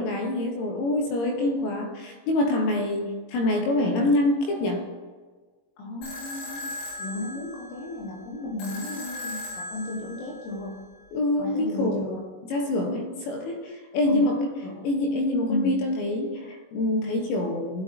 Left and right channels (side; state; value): right; late; 21 ms